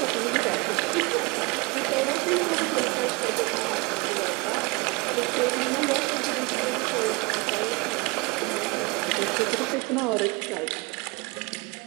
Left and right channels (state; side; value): quieter; left; 26.7 dB